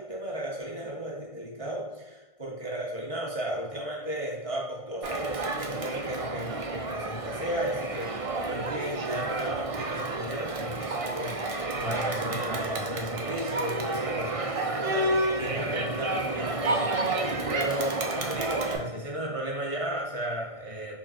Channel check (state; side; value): late; right; 1.6 ms